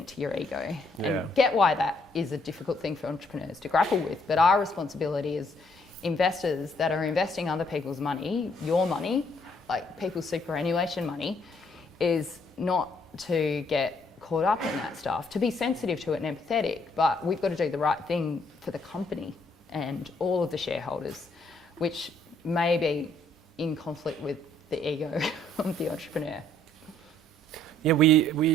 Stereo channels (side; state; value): both; normal; correlation 0.67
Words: to your ego. Yeah. And get why that is a difficult thing for entrepreneurs to grapple with. But our responsibility as investors that are investing other people's money, your money, like people's superannuation money, is not to get caught up in that stuff, to be sensitive to it and empathetic, but we've got to do the right thing for the company and all of the shareholders, which may be in conflict with the ego of the entrepreneur. Yeah,